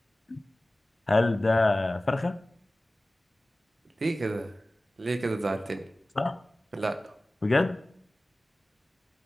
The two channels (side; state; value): both; normal; correlation 0.97